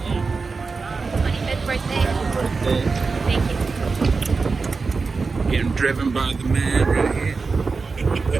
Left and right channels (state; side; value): quieter; left; 4.4 dB